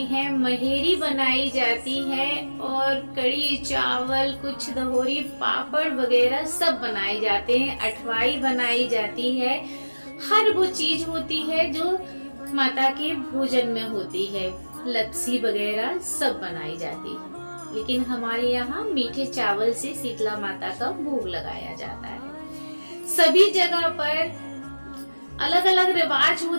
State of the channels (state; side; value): inverted; both; correlation -1.00